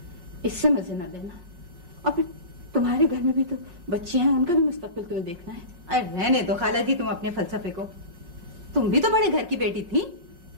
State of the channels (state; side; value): late; left; 5.6 ms